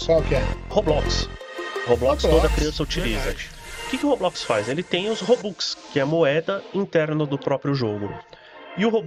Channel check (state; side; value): identical; both; correlation 1.00